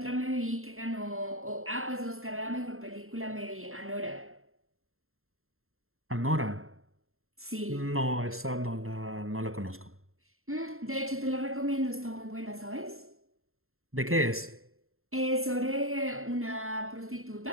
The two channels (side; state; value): left; late; 0.62 ms